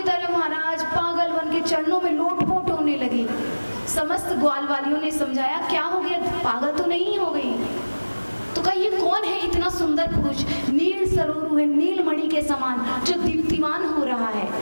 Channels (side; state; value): both; inverted; correlation -1.00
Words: तरह महाराज पागल बन के चरणों में लोटपोट होने लगी। समस्त ग्वाल वालियों ने समझाया क्या हो गया, पागल तो नहीं हो गई। तो कहा ये कौन है इतना सुंदर पुरुष, नील सरोरु है, नीलमणि के समान जो दीप्तिमान हो रहा है।